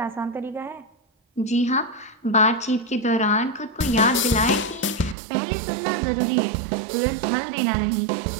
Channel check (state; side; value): drops out; left; at 5.2 s